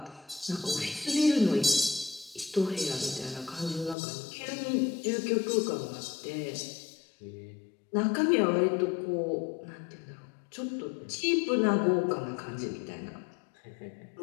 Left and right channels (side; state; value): right; drops out; at 4.0 s